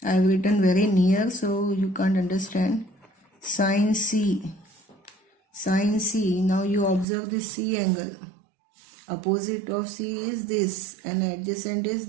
I have written very near so you can't understand. Sin C, now you observe this C angle. Opposite of C is this and adjacent is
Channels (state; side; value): drops out; left; at 7.1 s